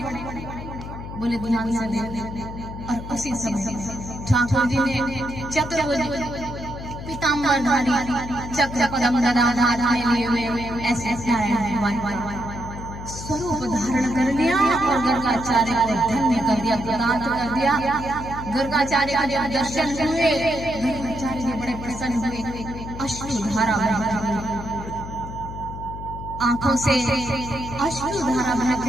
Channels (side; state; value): left; noise; hum, 10 dB below the sound